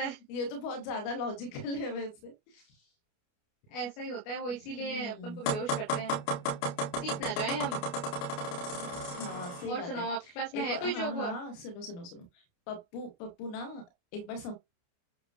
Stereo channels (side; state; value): right; late; 29 ms